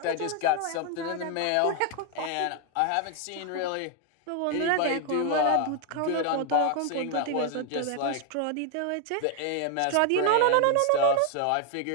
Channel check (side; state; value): both; different; correlation 0.00